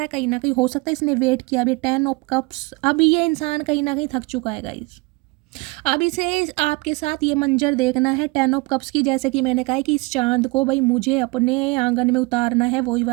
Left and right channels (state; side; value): quieter; left; 25.6 dB